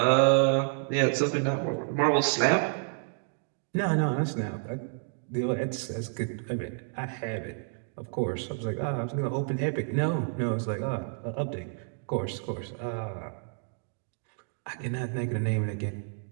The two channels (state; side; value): silent; left; 58 dB below the other